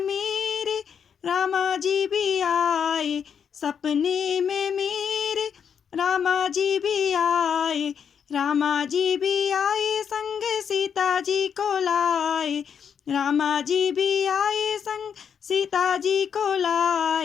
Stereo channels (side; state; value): right; quieter; 7.4 dB